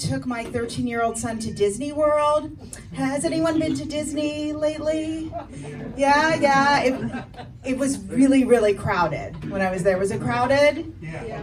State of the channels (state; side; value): identical; both; correlation 1.00